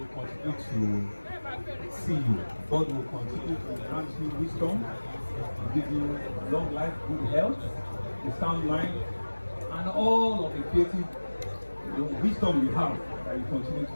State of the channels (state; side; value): inverted; both; correlation -1.00